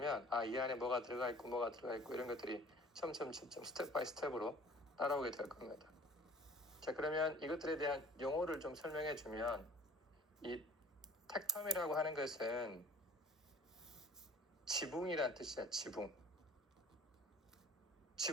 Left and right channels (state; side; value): normal; both; correlation 0.49